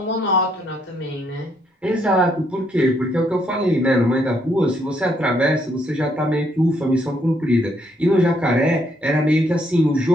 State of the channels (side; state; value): both; normal; correlation 0.72